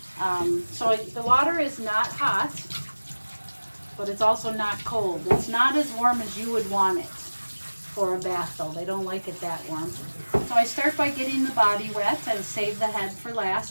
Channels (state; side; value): inverted; both; correlation -1.00